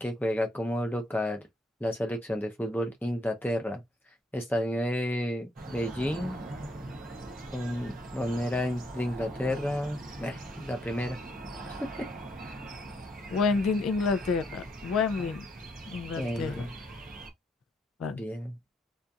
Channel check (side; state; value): both; normal; correlation 0.73